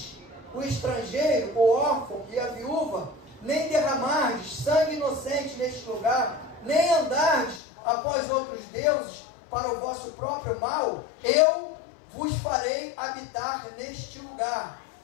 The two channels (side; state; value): right; drops out; at 7.6 s